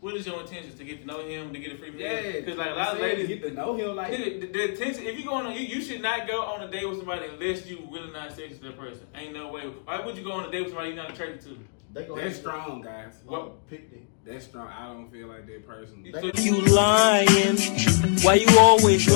what is your intentions to get to know him, to get a free meal? Yeah, because like a lot of ladies get to know him. Like the intention. If you going on, you should not go on a date with somebody unless you really not sexy to the person. Ain't no way. Why would you go on a date with somebody you're not attracted to? That's strong, guys. What? That's strong. I don't feel like that person. You lying? Why you always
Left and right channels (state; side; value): silent; right; digital silence